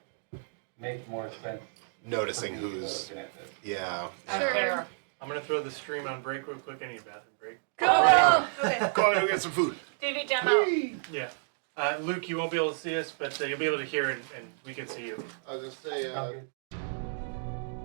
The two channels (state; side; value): silent; left; digital silence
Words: more sense. Noticing for me who's. looking at this. Yeah. Sure. There. I'm gonna throw the stream on break real quick. I need a bathroom break. Go! Okay. Go and go get some food. TV demo. Yeah. Luke, you won't be able to see us, but you'll be able to hear and we can see you. I was gonna say, Okay.